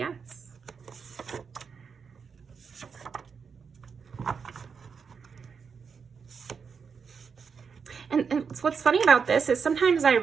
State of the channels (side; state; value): left; quieter; 5.9 dB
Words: And what's funny about this is sometimes I